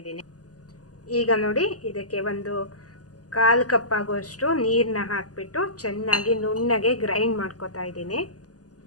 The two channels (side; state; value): right; late; 0.67 ms